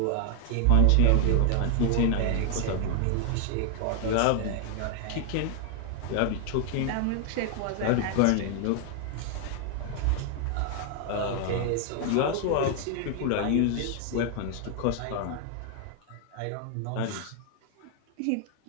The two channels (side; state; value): both; different; correlation 0.00